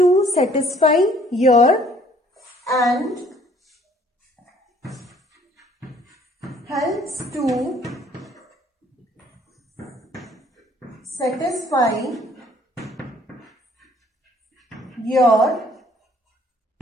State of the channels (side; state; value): both; normal; correlation 0.59